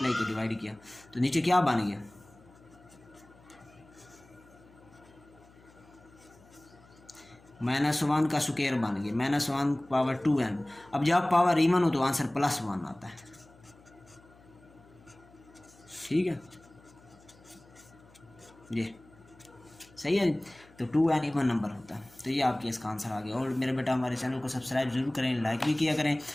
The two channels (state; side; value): noise; left; hum, 26 dB below the sound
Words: किया, डिवाइड किया, तो नीचे क्या बन गया, -1 का स्क्वायर बन गया, -1/2n। अब जब पावर इवन हो तो आंसर +1 आता है। ठीक है, ये सही है। तो 2n इवन नंबर होता है। तो ये आपके इसका आंसर आ गया। और मेरे बेटा हमारे चैनल को सब्सक्राइब जरूर करें, लाइक भी किया करें,